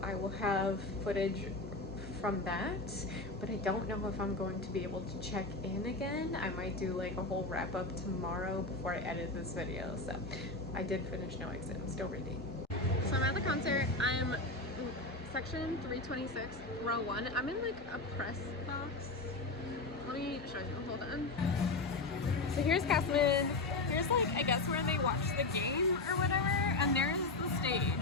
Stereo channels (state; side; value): quieter; right; 3.1 dB